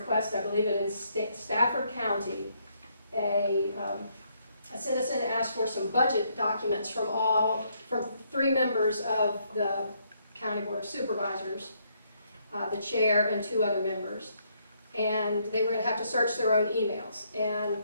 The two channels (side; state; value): both; inverted; correlation -0.72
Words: I believe in Stafford County, a citizen asked for some budget documents from 3 members of the County Board of Supervisors, the chair and 2 other members. And they were going to have to search their own emails. And